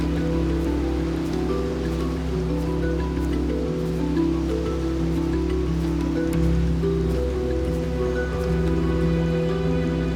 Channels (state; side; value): identical; both; correlation 1.00